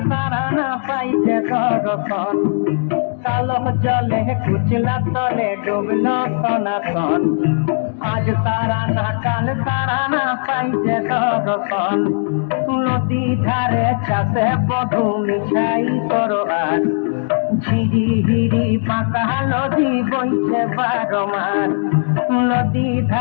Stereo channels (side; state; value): right; silent; digital silence